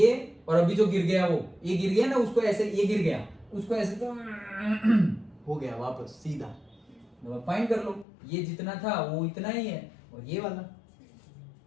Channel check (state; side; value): drops out; right; at 8.1 s